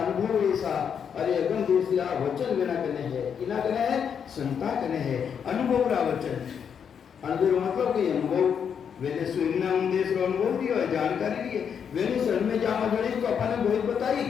अनुभव ऐसा, अरे अगम देशरा वचन बिना कने है, किना कने है संता कने है, अनुभव रा वचन। अनुभव मतलब कि अनुभव वेने स्वयं देश रो अनुभव दियो है, जानकारी दी है, वेने शरण में जामा जड़े तो अपन ने बहुत बताई।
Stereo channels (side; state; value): right; quieter; 7.5 dB